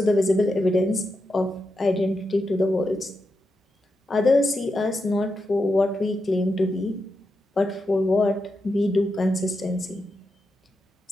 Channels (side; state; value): both; normal; correlation 0.87